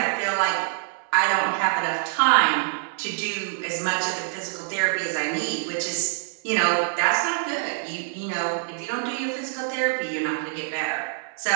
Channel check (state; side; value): silent; left; 62 dB below the other